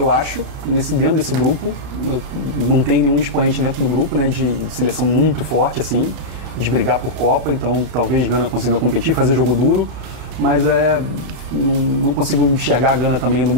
acho, dentro desse grupo. Não tem nenhum expoente dentro do grupo, né, de seleção muito forte, assim, de brigar por Copa. Então, talvez Gana consiga competir, fazer jogo duro, mas não consigo enxergar a Gana também indo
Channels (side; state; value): left; late; 32 ms